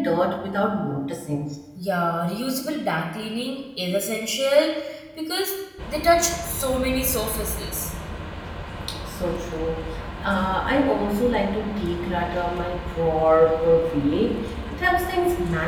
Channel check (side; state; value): both; identical; correlation 1.00